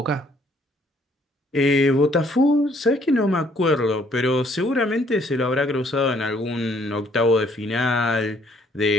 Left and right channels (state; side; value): normal; both; correlation 0.64